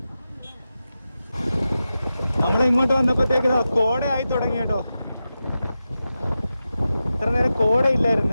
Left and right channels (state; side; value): inverted; both; correlation -0.92